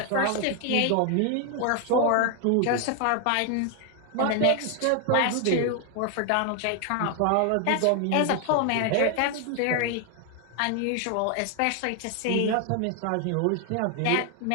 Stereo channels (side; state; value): both; different; correlation 0.00